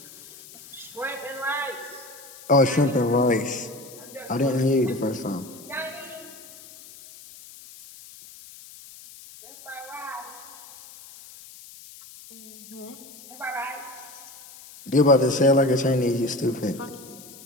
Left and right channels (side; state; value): left; noise; hiss, 19 dB below the sound